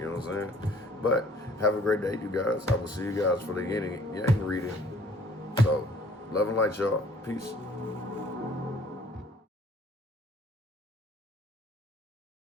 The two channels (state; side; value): normal; both; correlation 0.56